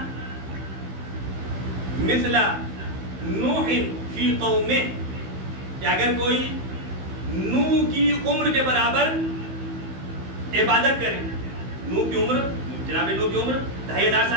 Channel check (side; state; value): left; late; 16 ms